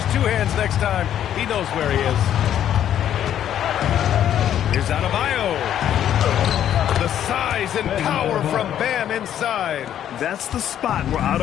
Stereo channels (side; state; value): right; quieter; 10.5 dB